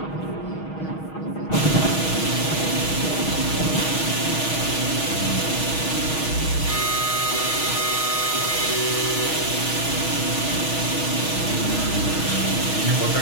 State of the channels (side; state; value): right; late; 6.3 ms